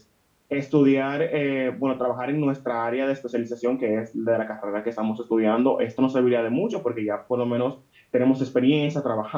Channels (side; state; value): both; identical; correlation 1.00